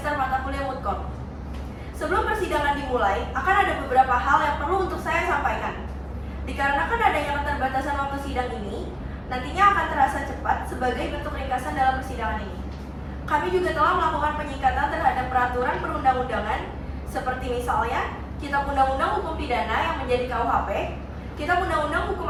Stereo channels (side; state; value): both; identical; correlation 1.00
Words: mata kuliah Mutkor. Sebelum persidangan dimulai, akan ada beberapa hal yang perlu untuk saya sampaikan. Dikarenakan adanya keterbatasan waktu sidang ini, nantinya akan terasa cepat sebagai bentuk ringkasan dalam persidangan ini. Kami juga telah melakukan penyingkatan terhadap peraturan perundang-undangan, seperti misalnya Kitab Undang-Undang Hukum Pidana yang menjadi KUHP, Kitab Undang-Undang Hukum